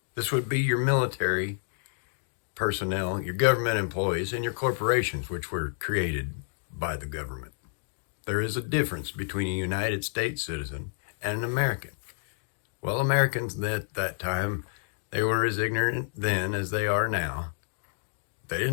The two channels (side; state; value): right; silent; digital silence